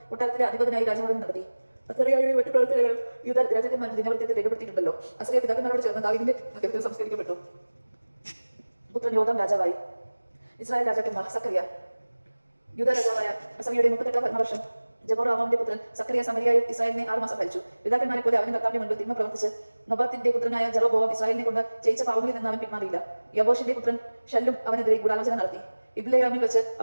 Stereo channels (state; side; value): inverted; both; correlation -1.00